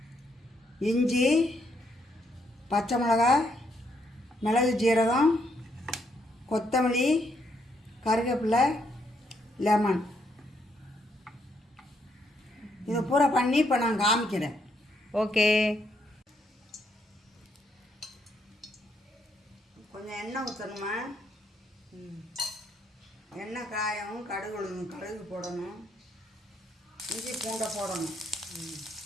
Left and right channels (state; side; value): normal; both; correlation 0.75